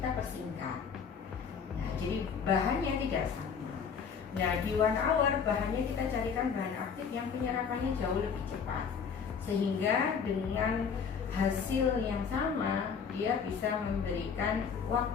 persingkat. Nah, jadi bahannya tidak sama. Nah, di 1 hour bahannya kita carikan bahan aktif yang penyerapannya jauh lebih cepat, sehingga dengan hasil yang sama dia bisa memberikan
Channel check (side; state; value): right; quieter; 6.4 dB